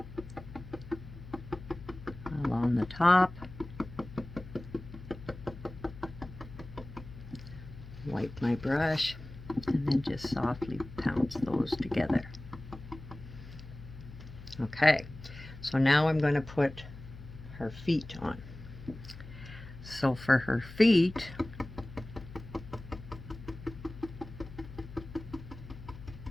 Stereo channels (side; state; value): left; noise; hum, 14 dB below the sound